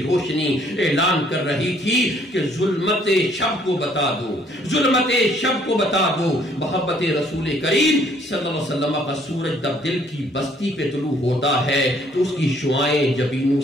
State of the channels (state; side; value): normal; both; correlation 0.63